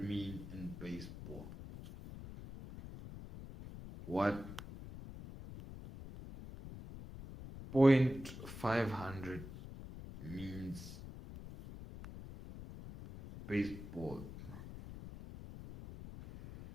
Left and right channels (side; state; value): left; noise; rumble, 12 dB below the sound